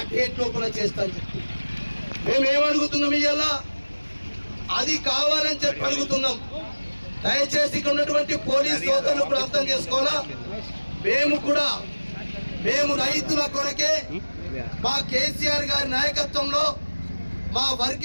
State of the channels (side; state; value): both; inverted; correlation -1.00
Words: డేట్ లోపల చేస్తాను చెప్పి మేమేమడుగుతున్నాం, ఇవాళ అది కావాలని చెప్పి అడుగుతున్నాం. దయచేసి ఇక్కడ ఉన్నటువంటి పోలీస్ సోదరులు కూడా అర్థం చేసుకోవాలా. మేము రైతుల కొరకే మా కేసీఆర్ గారి నాయకత్వంలో, మా